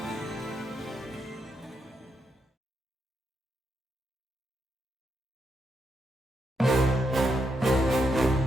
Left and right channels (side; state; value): both; normal; correlation 0.81